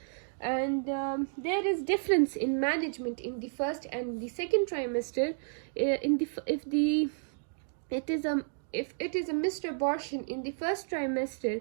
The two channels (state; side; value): silent; left; digital silence